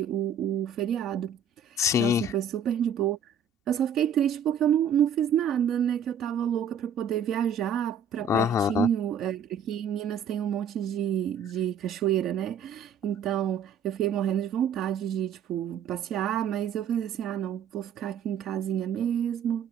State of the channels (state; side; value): quieter; left; 5.6 dB